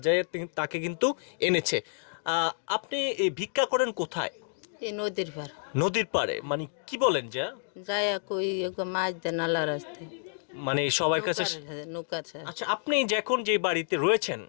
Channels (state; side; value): silent; right; digital silence